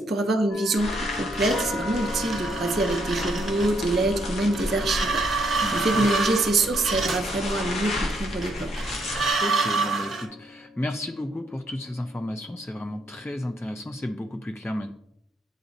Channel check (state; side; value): normal; both; correlation 0.74